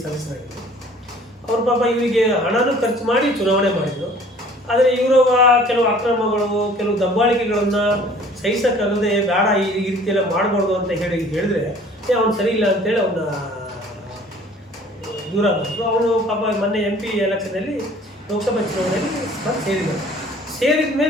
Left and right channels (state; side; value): normal; both; correlation 0.52